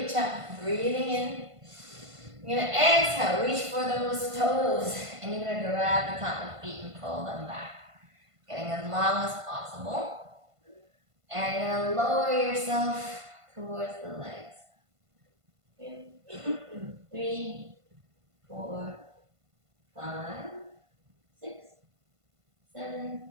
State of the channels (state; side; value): late; left; 1.5 ms